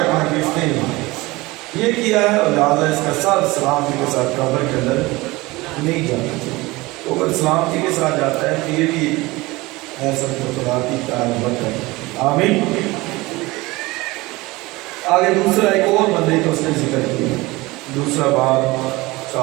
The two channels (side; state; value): left; quieter; 21.5 dB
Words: کہ اس نے یہ کیا ہے، اور لہٰذا اس کا سر سلامتی کے ساتھ قبر کے اندر نہیں جانا چاہیے۔ تو اگر سلامتی کے ساتھ جاتا ہے تو یہ بھی ایسا خدا کی تعریف ہے، آمین۔ آگے دوسرا ایک اور بندے کا اس نے ذکر کیا، دوسرا باب